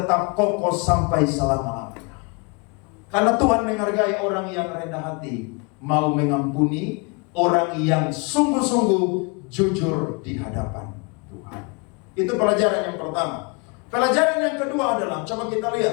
kokoh sampai selama-lamanya. Karena Tuhan menghargai orang yang rendah hati, mau mengampuni orang yang sungguh-sungguh jujur di hadapan Tuhan. Itu pelajaran yang pertama. Pelajaran yang kedua adalah, coba kita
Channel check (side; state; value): right; quieter; 31.2 dB